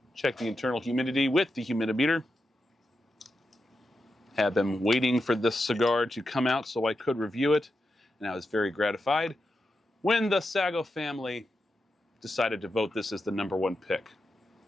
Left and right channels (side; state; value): both; normal; correlation 0.88